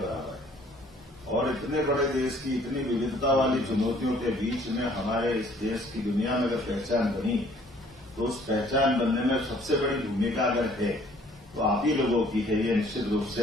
है। और इतने बड़े देश की इतनी विविधता वाली चुनौतियों के बीच में हमारे इस देश की दुनिया में अगर पहचान बनी, तो उस पहचान बनने में सबसे बड़ी भूमिका अगर है तो आप ही लोगों की है। ये निश्चित रूप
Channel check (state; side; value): normal; both; correlation 0.58